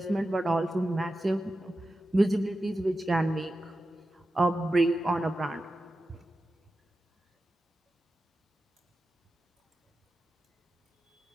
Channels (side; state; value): both; normal; correlation 0.92